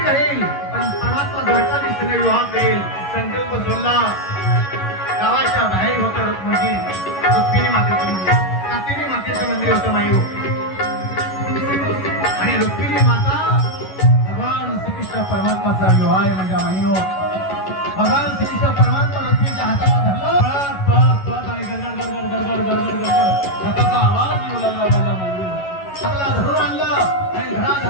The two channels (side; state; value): right; late; 11 ms